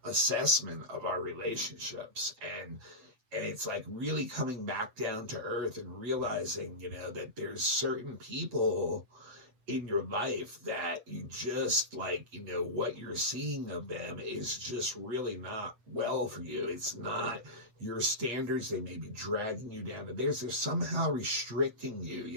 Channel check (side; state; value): left; late; 8.5 ms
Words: assessment of our relationships, and it's like really coming back down to earth and realizing, that there's certain people in your life that you just like, what you're seeing of them is just really not well for you. It's not your standards. They may be dragging you down to theirs. They're somehow restricting you,